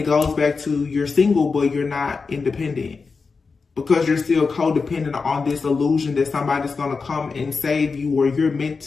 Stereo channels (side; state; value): right; quieter; 4.7 dB